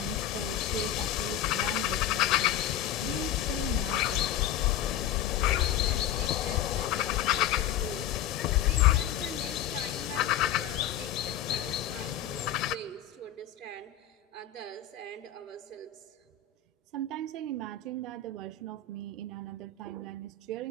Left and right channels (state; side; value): quieter; right; 9.6 dB